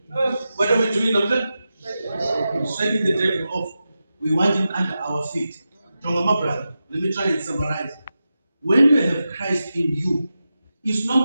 What are we doing now? Shaking the devil off. We want him under our feet. My brother, let me try and summarize. When you have Christ in you, it's no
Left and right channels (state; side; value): inverted; both; correlation -0.91